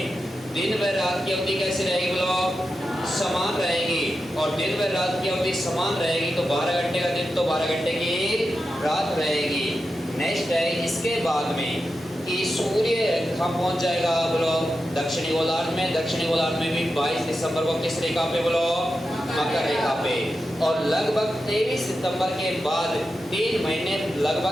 दिन व रात की अवधि कैसी रहेगी बोलो? समान रहेगी। और दिन व रात की अवधि समान रहेगी तो 12 घंटे का दिन तो 12 घंटे की रात रहेगी। नेक्स्ट है इसके बाद में कि सूर्य कहाँ पहुंच जाएगा बोलो? दक्षिणी गोलार्ध में। दक्षिणी गोलार्ध में भी 22 दिसंबर को किस रेखा पे बोलो? मकर रेखा पे। और लगभग 23 सितंबर के बाद 3 महीने,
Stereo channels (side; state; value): both; normal; correlation 0.90